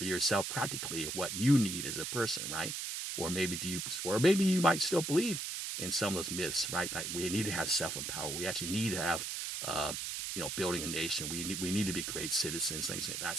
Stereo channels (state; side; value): noise; right; hiss, 4 dB below the sound